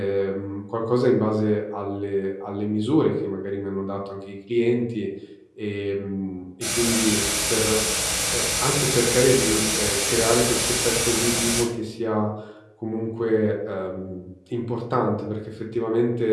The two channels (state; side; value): identical; both; correlation 1.00